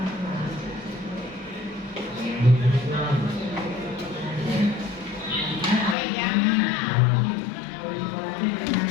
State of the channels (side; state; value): right; drops out; at 6.0 s